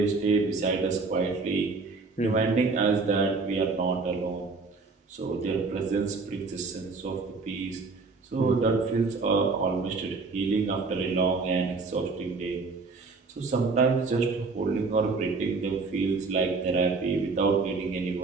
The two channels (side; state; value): left; quieter; 4.1 dB